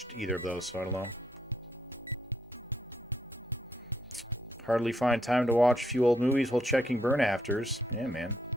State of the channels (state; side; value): normal; both; correlation 0.75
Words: either of those, so I don't know. Hardly find time to watch a few old movies while checking burn afters. Yeah, man.